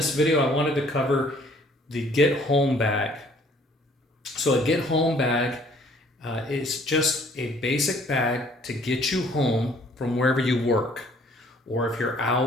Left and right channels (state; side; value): normal; both; correlation 0.58